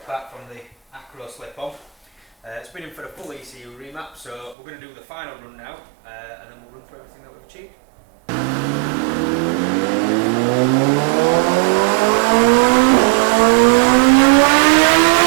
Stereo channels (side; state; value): left; drops out; at 4.5 s